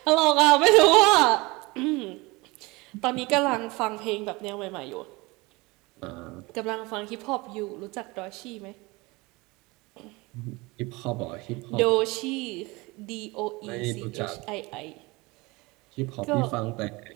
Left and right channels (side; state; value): left; quieter; 23.9 dB